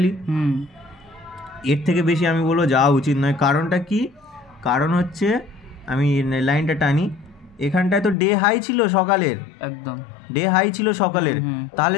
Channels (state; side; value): drops out; right; at 8.2 s